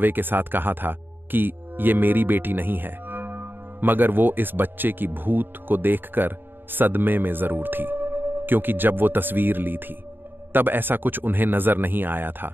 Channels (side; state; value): left; late; 0.096 ms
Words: के साथ कहा था कि ये मेरी बेटी नहीं है, मगर वो इस बच्चे की भूत को देखकर सदमे में जरूर थी, क्योंकि जब वो तस्वीर ली थी तब ऐसा कुछ उन्हें नजर नहीं आया था।